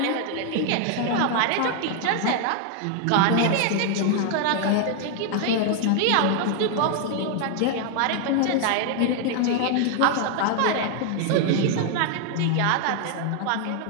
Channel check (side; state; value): both; different; correlation 0.00